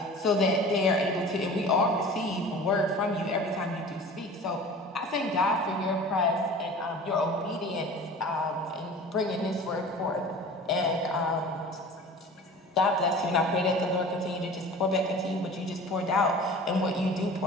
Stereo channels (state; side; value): normal; both; correlation 0.40